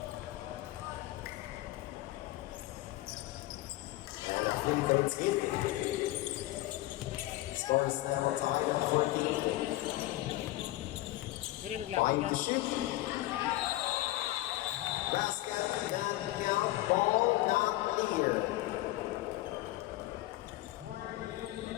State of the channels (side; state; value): right; quieter; 17.4 dB